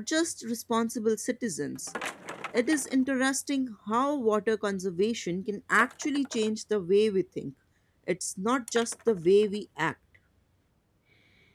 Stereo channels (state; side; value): identical; both; correlation 1.00